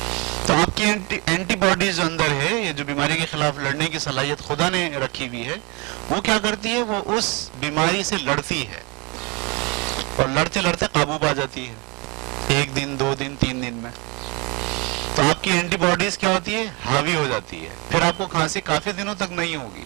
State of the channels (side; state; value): left; quieter; 28.8 dB